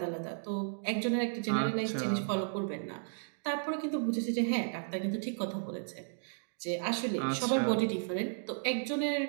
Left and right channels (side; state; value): left; silent; digital silence